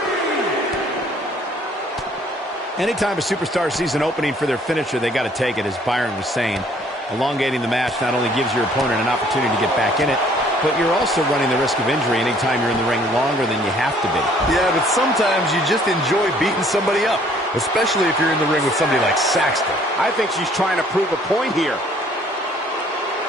Anytime a superstar sees an opening for their finisher, they got to take it, as Byron was saying. Elongating the match not only gives your opponent an opportunity to get back in it, but you're also running the risk of injury anytime you're in the ring longer than you have to be. Yeah, but sometimes you just enjoy beating somebody up, especially if you're in the ring with somebody like Saxton. I think she's trying to prove a point here.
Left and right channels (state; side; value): normal; both; correlation 0.59